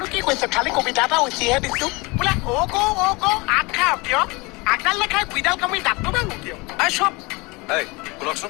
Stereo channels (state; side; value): quieter; right; 25.7 dB